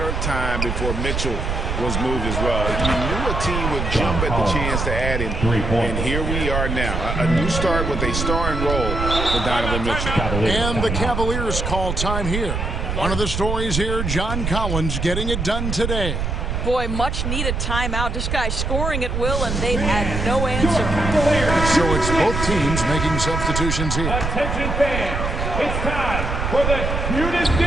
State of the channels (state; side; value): noise; right; rumble, 2 dB below the sound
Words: of time before Mitchell was moved as well. You knew a team would jump at the chance to add him. And here we are now. A new start with a starring role for Donovan Mitchell. And the Cavaliers call time here. One of the stories here, John Collins getting it done today. Boy, much needed timeout. This guy's scoring at will, and they've had no answer. So it's both teams making substitutions here. Attention fans, it's time for the cutest